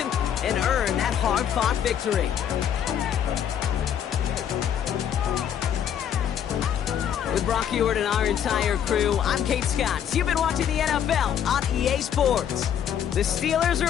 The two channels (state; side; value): quieter; right; 9.2 dB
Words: and earn that hard-fought victory. With Brock Ewart and our entire crew, I'm Kate Scott. You've been watching the NFL on EA Sports. The Steelers